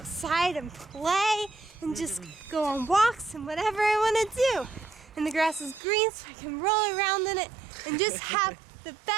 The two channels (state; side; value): drops out; left; at 5.8 s